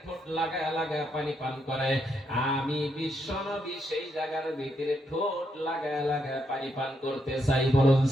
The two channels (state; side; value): normal; both; correlation 0.78